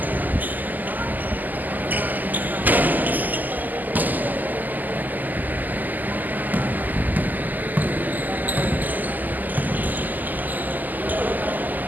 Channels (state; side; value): late; left; 0.084 ms